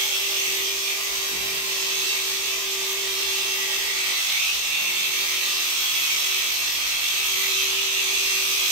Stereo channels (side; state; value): left; late; 21 ms